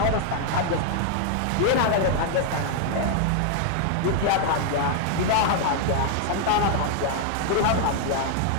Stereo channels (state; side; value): different; both; correlation 0.00